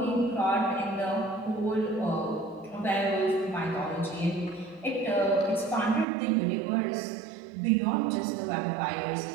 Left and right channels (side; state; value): left; drops out; at 6.1 s